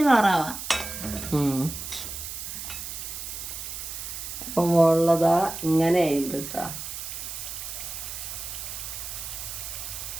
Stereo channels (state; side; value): noise; right; hiss, 7 dB below the sound